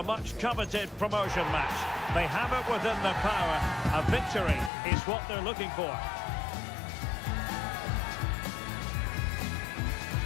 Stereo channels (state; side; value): drops out; right; at 4.7 s